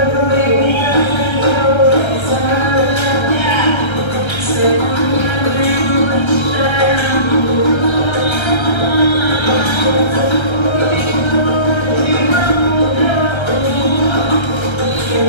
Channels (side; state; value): right; late; 1.3 ms